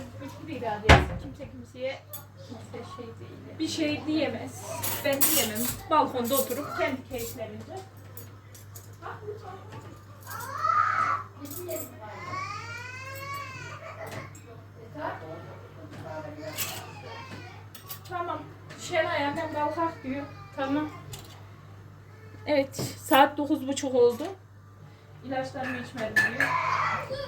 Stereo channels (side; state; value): both; identical; correlation 1.00